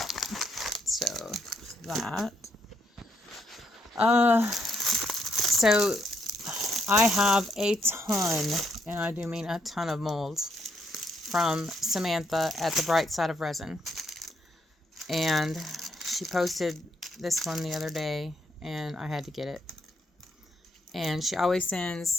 So that. So I have a ton, and I do mean a ton of molds from Samantha at the Bright Side of Resin. And she posted this one the other day, and I had to get it. And she always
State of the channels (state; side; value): normal; both; correlation 0.75